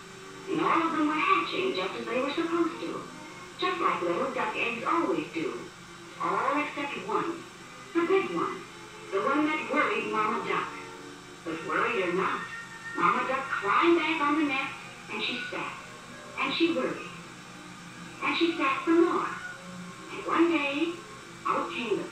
and all of them were hatching just as they were supposed to, just like little duck eggs always do, all except one, the big one, the one that worried Mama Duck. But worried or not, Mama Duck climbed back on the nest, and she sat, and she worried, and she sat some more. And one day, out came the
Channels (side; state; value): both; identical; correlation 1.00